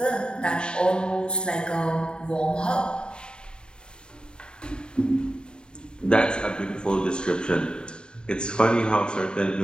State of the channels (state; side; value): late; right; 0.049 ms